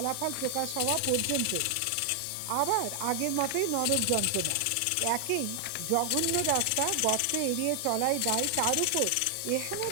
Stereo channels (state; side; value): different; both; correlation 0.00